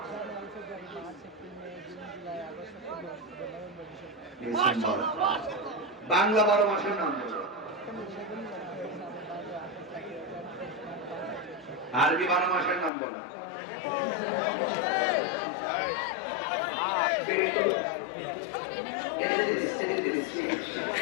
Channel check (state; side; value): drops out; right; at 12.9 s